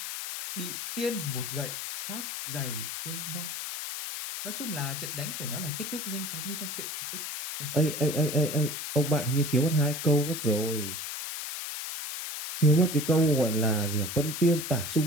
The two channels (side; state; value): left; noise; hiss, 6 dB below the sound